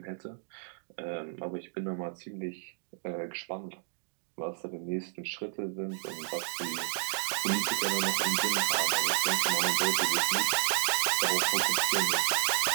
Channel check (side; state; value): left; silent; digital silence